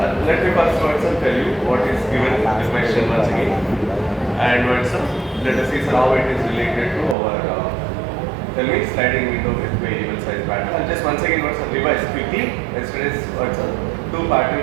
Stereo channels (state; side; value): drops out; left; at 7.2 s